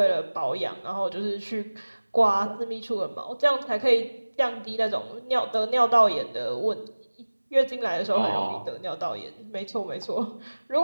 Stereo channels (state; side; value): inverted; both; correlation -1.00